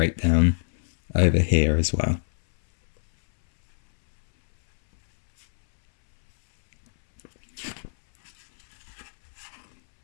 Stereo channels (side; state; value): right; silent; 63 dB below the other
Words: over here as well.